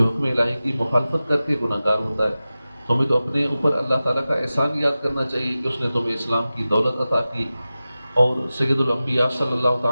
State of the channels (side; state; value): both; inverted; correlation -0.95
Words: حکم الہی کی مخالفت کر کے گناہ گار ہوتا ہے. تمہیں تو اپنے اوپر اللہ تعالیٰ کا احسان یاد کرنا چاہیے کہ اس نے تمہیں اسلام کی دولت عطا کی اور سید الانبیاء صلی اللہ